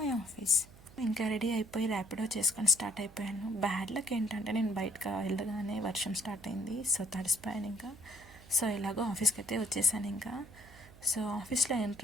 office. ఇంకా రెడీ అయిపోయి ర్యాపిడో చేసుకొని స్టార్ట్ అయిపోయాను. బ్యాడ్ లక్ ఏంటంటే నేను బయటకు వెళ్ళగానే వర్షం స్టార్ట్ అయింది. సో తడిసిపోయాను ఇంకా. సో ఎలాగో ఆఫీస్కి అయితే వచ్చేసాను ఇంకా. సో ఆఫీస్లో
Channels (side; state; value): right; noise; hum, 21 dB below the sound